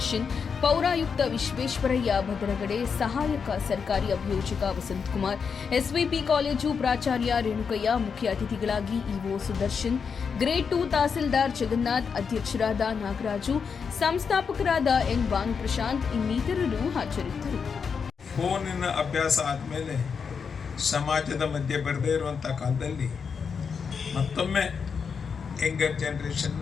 ಪೌರಾಯುಕ್ತ ವಿಶ್ವೇಶ್ವರಯ್ಯ ಭದ್ರಗಡೆ, ಸಹಾಯಕ ಸರ್ಕಾರಿ ಅಭಿಯೋಜಕ ವಸಂತಕುಮಾರ್, ಎಸ್ವಿಪಿ ಕಾಲೇಜು ಪ್ರಾಚಾರ್ಯ ರೇಣುಕಯ್ಯ, ಮುಖ್ಯ ಅತಿಥಿಗಳಾಗಿ ಇಒ ಸುದರ್ಶನ್, ಗ್ರೇಡ್ 2 ತಹಸೀಲ್ದಾರ್ ಜಗನ್ನಾಥ್, ಅಧ್ಯಕ್ಷರಾದ ನಾಗರಾಜು, ಸಂಸ್ಥಾಪಕರಾದ ಎನ್ ಭಾನುಪ್ರಶಾಂತ್ ಇನ್ನಿತರರು ಹಾಜರಿದ್ದರು. ಫೋನಿನ ಅಭ್ಯಾಸ ಆದಮೇಲೆ ಸಮಾಜದ ಮಧ್ಯೆ ಬರದೇ ಇರುವಂಥ ಕಾಲದಲ್ಲಿ ಮತ್ತೊಮ್ಮೆ ಯಂಗರ್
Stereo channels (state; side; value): quieter; right; 6.0 dB